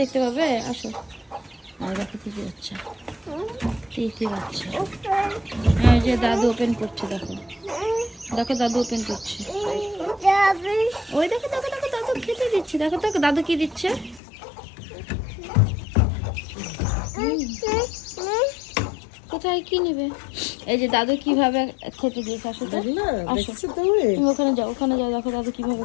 দেখতে পাবে, আসো। আর দেখো তিতি বাচ্চা, তিতি বাচ্চা। হ্যাঁ ওই যে দাদু ওপেন করছে, দেখো দেখো দাদু ওপেন করছে। ওই দেখো দেখো দেখো দাদু খেতে দিচ্ছে, দেখো দেখো দাদু কি দিচ্ছে। কোথায় কি নেবে? এই যে দাদু কিভাবে খেতে দিয়েছে। আসো তো, আসো তুমি ওখানে যাও, ওখানে যাও, দেখো দাদু কিভাবে।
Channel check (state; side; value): drops out; right; at 14.2 s